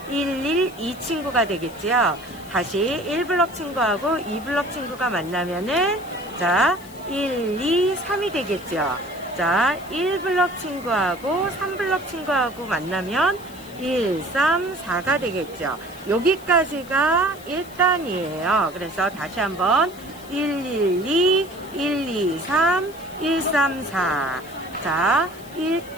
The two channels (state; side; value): noise; left; hiss, 21 dB below the sound